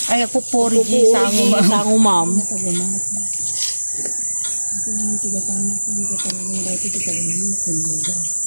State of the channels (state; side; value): inverted; both; correlation -1.00